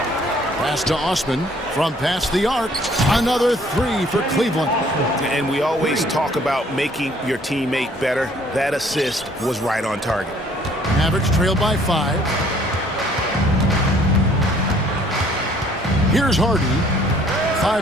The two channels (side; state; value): both; normal; correlation 0.59